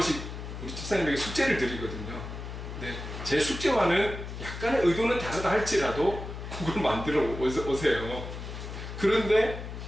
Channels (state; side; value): noise; left; hum, 8 dB below the sound